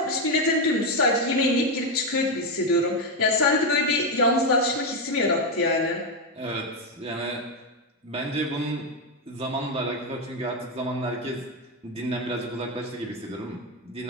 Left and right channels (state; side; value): normal; both; correlation 0.07